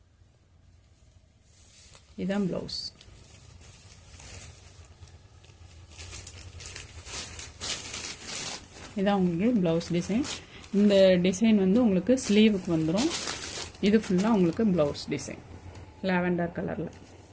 இதுதான் ப்ளவுஸ். இதான் உங்களுக்கு ப்ளவுஸ் டிசைன். இந்த டிசைன் வந்து உங்களுக்கு ஸ்லீவுக்கு வந்துடும். இது ஃபுல்லாக உங்களுக்கு ப்ளவுஸ் டிசைன் லாவெண்டர் கலரில்.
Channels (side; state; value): both; identical; correlation 1.00